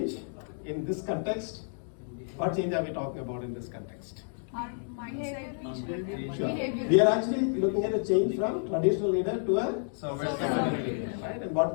in this context? What change are we talking about in this context? Our mindset, Sure. behavior. We are actually looking at a change from traditional leader to a Servant leader, right? And what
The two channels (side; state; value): right; silent; digital silence